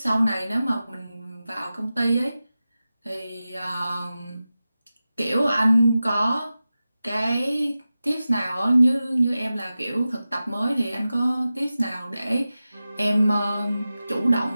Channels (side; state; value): both; inverted; correlation -0.94